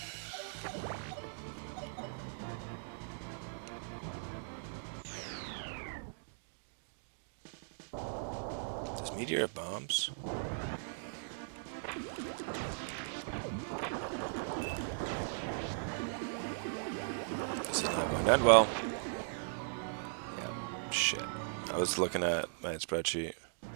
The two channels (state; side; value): silent; left; digital silence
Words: Does Meteor of bombs? This is not going to end well. Yeah, shit. I was looking at my spreadsheet.